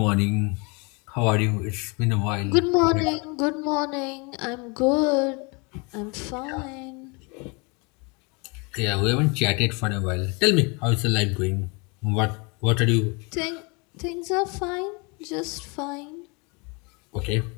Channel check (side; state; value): right; quieter; 30.4 dB